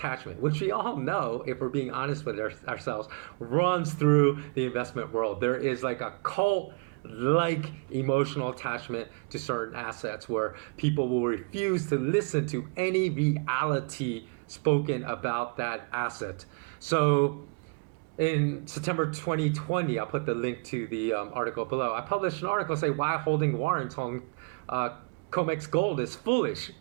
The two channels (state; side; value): quieter; left; 32.9 dB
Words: which we all know, if we're being honest with ourselves, runs through the investment world. There is like a cult-like emotional attachment to certain assets where people will refuse to listen to any reality spoken about that asset. So in September 2020, I'll put the link to the article below. I published an article saying why holding warrants on COMEX gold is foolish.